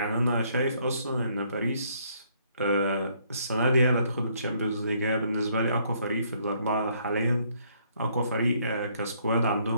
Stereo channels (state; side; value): inverted; both; correlation -0.67